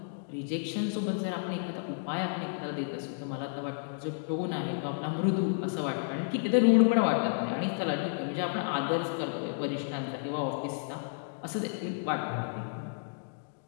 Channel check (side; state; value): right; silent; digital silence